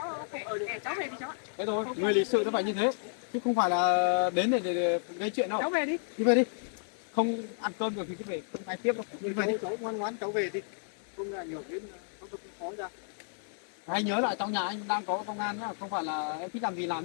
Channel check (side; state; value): right; silent; digital silence